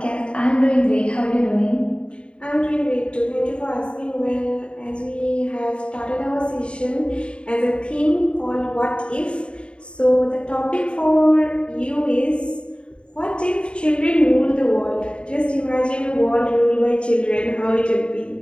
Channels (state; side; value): late; right; 0.055 ms